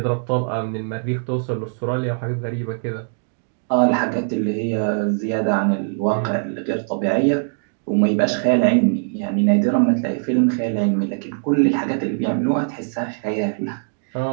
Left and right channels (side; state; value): left; silent; digital silence